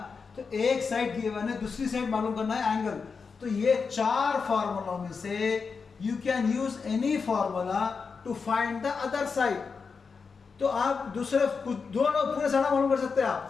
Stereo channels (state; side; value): quieter; right; 5.2 dB